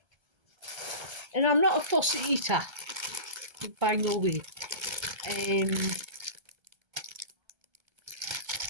and I'm not a fussy eater, by no way.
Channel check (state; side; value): late; left; 1.3 ms